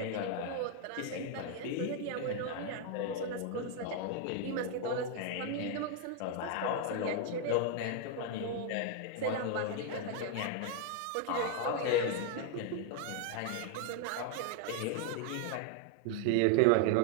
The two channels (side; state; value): both; different; correlation 0.00